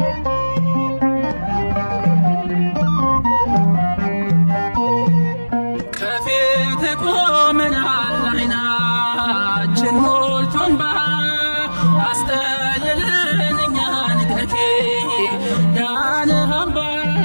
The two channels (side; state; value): both; inverted; correlation -1.00